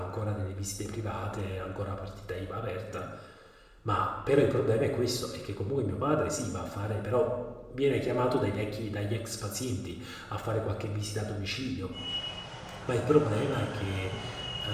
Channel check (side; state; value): both; identical; correlation 1.00